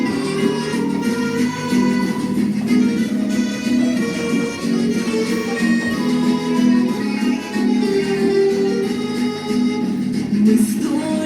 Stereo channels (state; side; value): identical; both; correlation 1.00